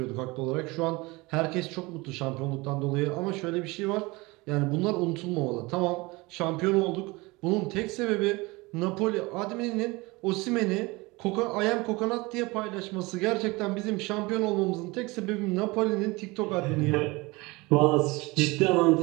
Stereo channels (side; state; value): left; quieter; 23.5 dB